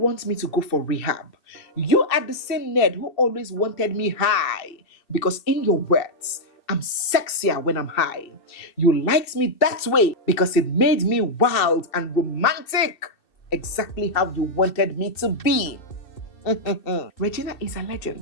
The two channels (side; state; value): right; late; 2.6 ms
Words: me to go for rehab. You are the same Ned who always wanted me high, because in your words, I'm sexier when I'm high. You liked me that way because it made me wild and romantic. Exactly how you wanted me to be." Regina is